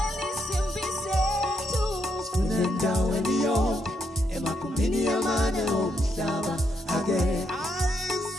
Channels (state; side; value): normal; both; correlation 0.78